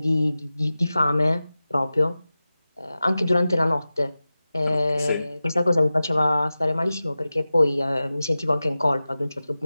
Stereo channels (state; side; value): inverted; both; correlation -0.95